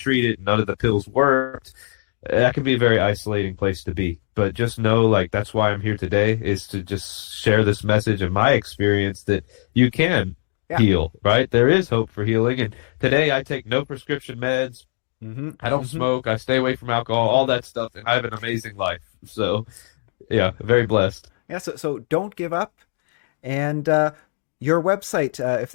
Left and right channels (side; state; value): right; silent; digital silence